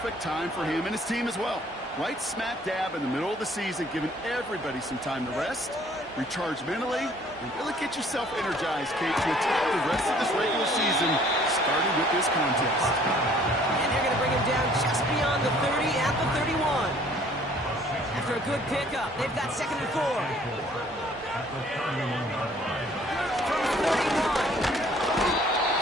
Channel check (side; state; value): both; normal; correlation 0.57